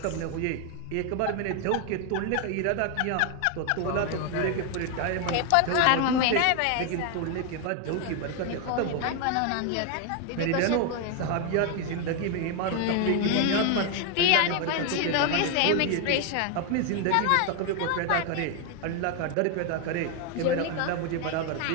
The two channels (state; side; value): different; both; correlation 0.01